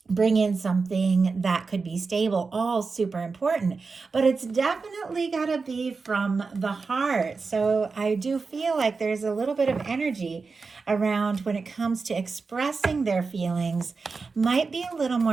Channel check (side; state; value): left; quieter; 4.5 dB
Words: bring in something that could be stable, all super important. But it's definitely got to be from the heart. So I do feel like there's a little bit of energy around when it comes to expressing their feelings, might be a little